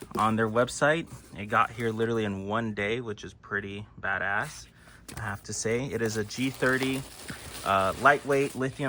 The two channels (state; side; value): identical; both; correlation 1.00